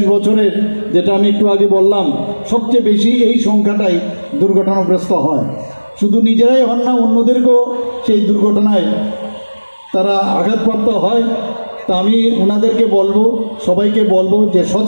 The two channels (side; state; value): both; inverted; correlation -1.00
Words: বছরের, যেটা আমি একটু আগে বললাম, সবচেয়ে বেশি এই সংখ্যাটাই দুর্ঘটনাগ্রস্ত হয়। শুধু নিজেরাই হন না, অন্যদেরকেও সেই দুর্ঘটনায় তারা আঘাতপ্রাপ্ত হয়। তা আমি ওনাদেরকে বলবো, সবাইকে বলবো যে